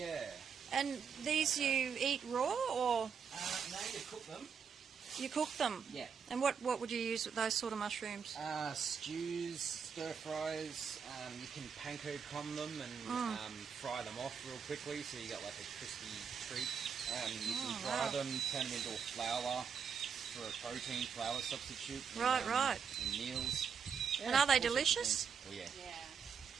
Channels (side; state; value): left; quieter; 6.7 dB